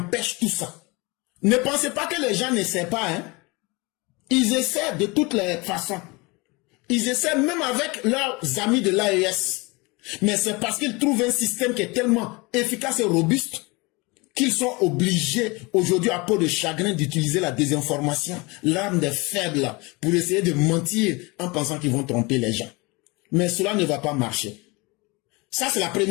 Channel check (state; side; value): quieter; right; 25.8 dB